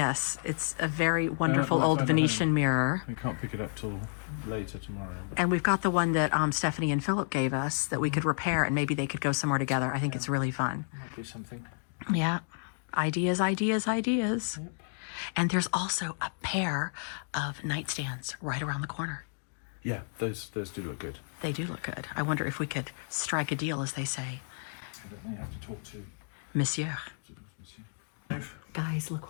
it's a very wonderful might old find a Venetian home. mirror. We can't pick it up till later tomorrow. And we've got the one that Stephanie and Philip gave us that we could repair and maybe they could go somewhere together. I think it's really fun. Might be something. Yeah. Ideas, ideas, ideas. Yep. And there's also a pair of nightstands right around the corner. Yeah, those do look good. They do look good. I wonder if we could strike a deal, as they say. I don't know, you have to talk to Monsieur. Monsieur. Guys,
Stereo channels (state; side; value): silent; right; digital silence